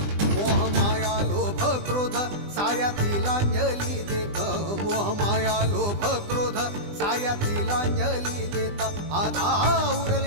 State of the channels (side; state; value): left; late; 20 ms